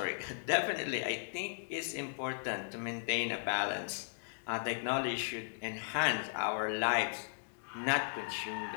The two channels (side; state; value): right; silent; digital silence